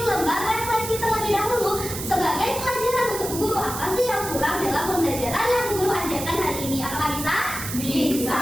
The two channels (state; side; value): noise; right; hiss, 7 dB below the sound